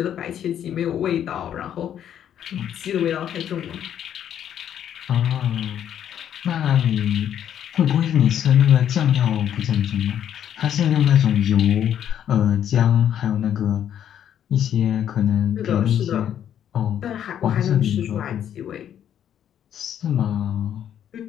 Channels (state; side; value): quieter; right; 9.9 dB